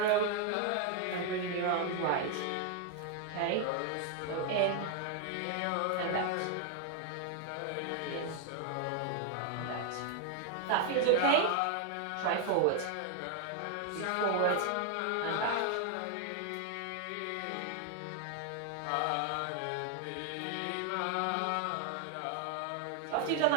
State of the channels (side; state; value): both; different; correlation 0.00